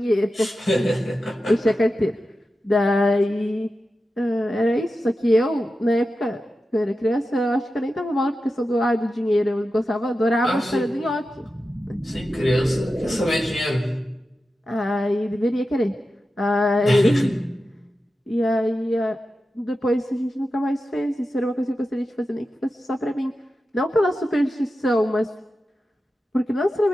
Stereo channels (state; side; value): normal; both; correlation 0.92